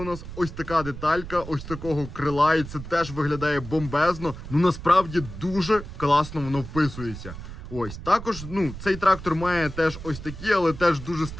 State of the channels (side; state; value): right; noise; rumble, 11 dB below the sound